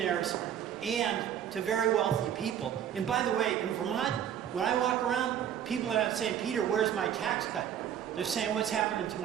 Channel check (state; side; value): quieter; left; 9.7 dB